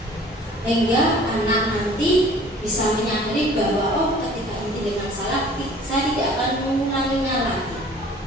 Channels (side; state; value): both; normal; correlation 0.50